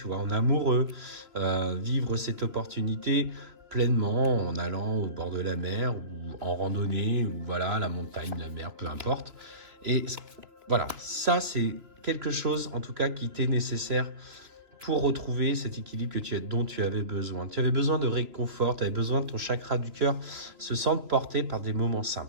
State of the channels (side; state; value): left; late; 3.0 ms